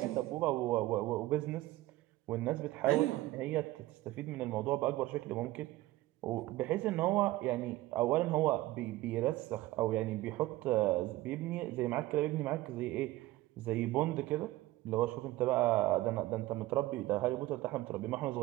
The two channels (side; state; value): left; quieter; 17.5 dB